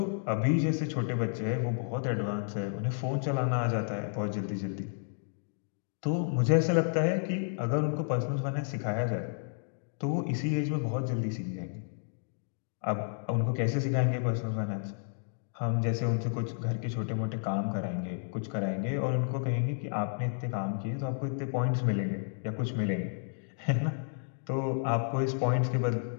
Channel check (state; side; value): silent; right; digital silence